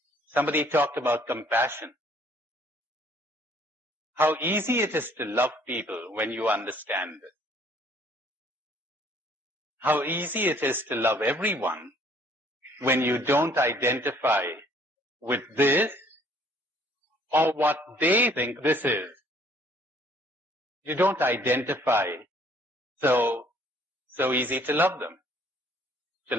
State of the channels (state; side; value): normal; both; correlation 0.59